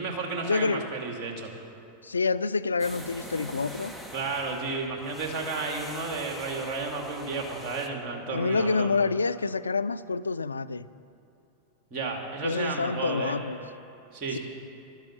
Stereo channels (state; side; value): inverted; both; correlation -0.61